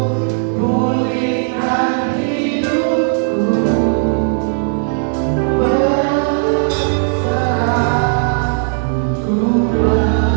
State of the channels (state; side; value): silent; left; 64 dB below the other